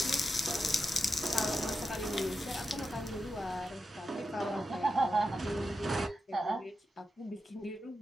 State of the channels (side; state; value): both; normal; correlation 0.88